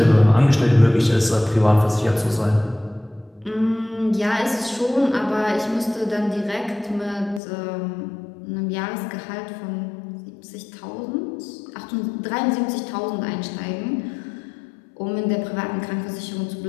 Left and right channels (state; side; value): drops out; right; at 7.4 s